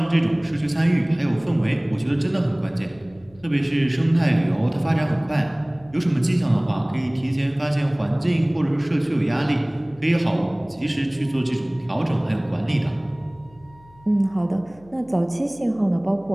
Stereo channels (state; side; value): noise; left; hum, 26 dB below the sound